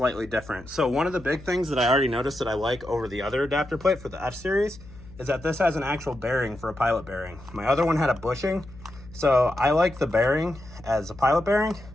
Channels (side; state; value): left; noise; hum, 19 dB below the sound